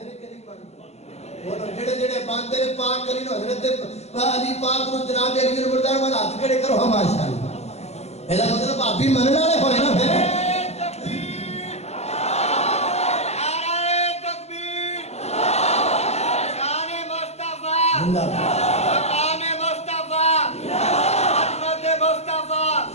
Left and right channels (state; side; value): late; right; 0.31 ms